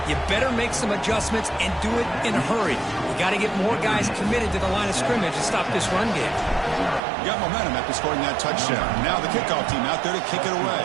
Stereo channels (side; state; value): left; drops out; at 7.0 s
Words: you better make some adjustments and do it in a hurry. You got to get more guys committed to the line of scrimmage to stop this run game. You got momentum after scoring that touchdown. Now the kickoff team out there to kick it away.